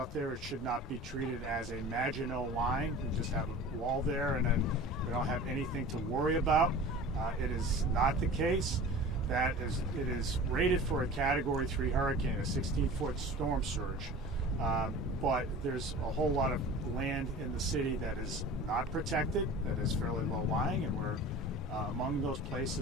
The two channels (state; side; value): normal; both; correlation 0.39